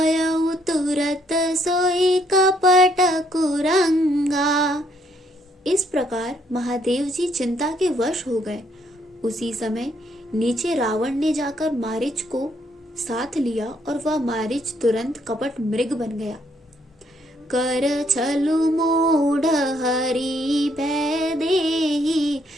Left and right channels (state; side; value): normal; both; correlation 0.70